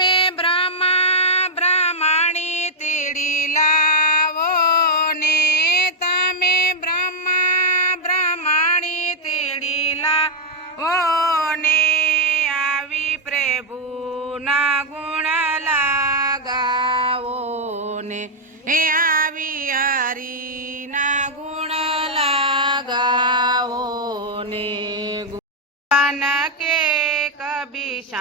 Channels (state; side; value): normal; both; correlation -0.01